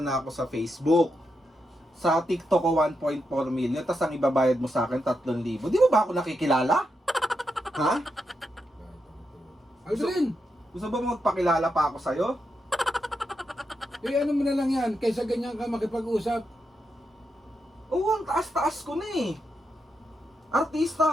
ako sa Facebook. Sa TikTok ko 1.4 million. Tapos ang ibabayad mo sa akin 3,000. Di mo ba ako nakikilala? Ha? Aldrin, Gusto ba magpakilala pa ako sa'yo? eh ano mo na lang yan, kaysa ganyan ka makipag-usap. Oo, ang taas-taas ko na eh.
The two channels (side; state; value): both; normal; correlation 0.84